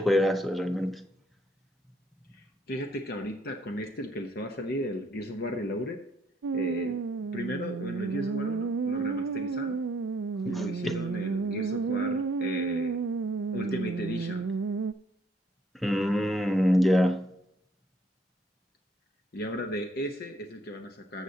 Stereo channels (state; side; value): normal; both; correlation 0.67